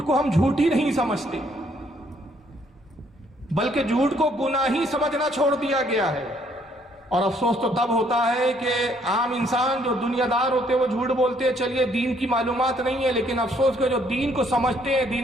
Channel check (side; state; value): both; normal; correlation 0.66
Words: کو ہم جھوٹ ہی نہیں سمجھتے، بلکہ جھوٹ کو گناہ ہی سمجھنا چھوڑ دیا گیا ہے۔ اور افسوس تو تب ہوتا ہے کہ عام انسان جو دنیا دار ہوتے ہیں وہ جھوٹ بولتے ہیں، چلیے دین کی معلومات نہیں ہے، لیکن افسوس کہ جو دین کو سمجھتے ہیں،